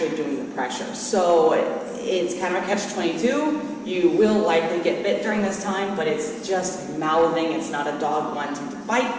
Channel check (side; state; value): both; identical; correlation 1.00